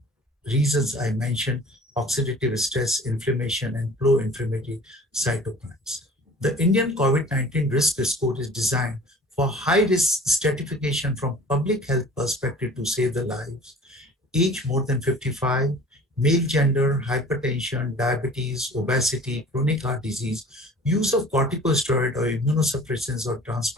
reasons I mentioned: oxidative stress, inflammation, and pro-inflammatory cytokines. The Indian COVID-19 risk score is designed for high-risk stratification from public health perspective to save the lives. Age more than 55, male gender, hypertension, diabetes, obesity, chronic heart disease, use of corticosteroid or immunosuppressants or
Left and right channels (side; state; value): both; normal; correlation 0.46